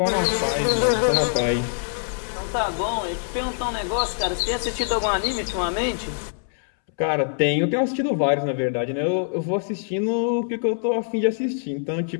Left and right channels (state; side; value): silent; right; 63 dB below the other